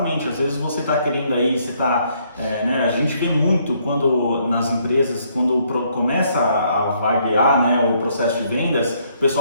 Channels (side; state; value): both; inverted; correlation -0.69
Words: Às vezes você está querendo aí, você está, né? A gente vê muito quando nas empresas, quando começa a vaguear, né, o processo de vendas, o